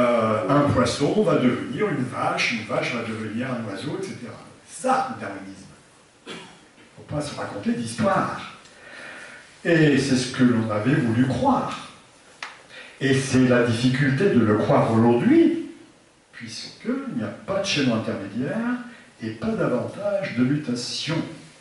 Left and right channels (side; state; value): both; identical; correlation 1.00